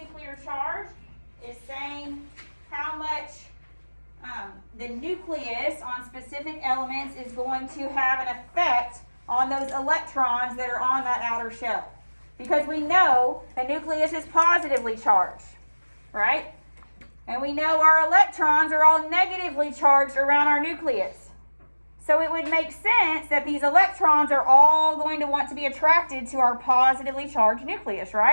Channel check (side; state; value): both; inverted; correlation -1.00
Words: charge is saying how much the nucleus on specific elements is going to have an effect on those electrons that are on that outer shell. Because we know the nucleus is positively charged, right? And we know our electrons are all negatively charged around our nucleus. So it would make sense that these electrons are all going to want to be attracted to our positively charged nucleus,